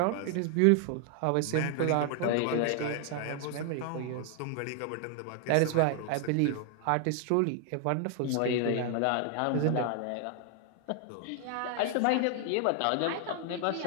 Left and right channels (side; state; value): both; different; correlation 0.00